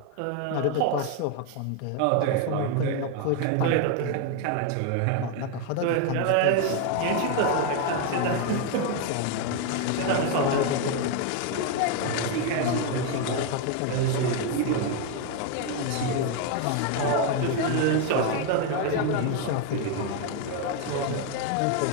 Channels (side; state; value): both; different; correlation 0.01